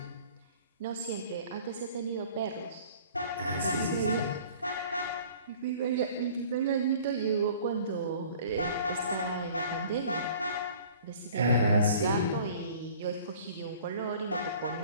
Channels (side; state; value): both; inverted; correlation -0.49